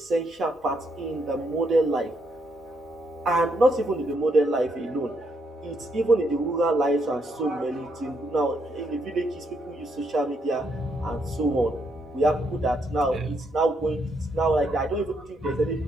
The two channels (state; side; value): normal; both; correlation 0.76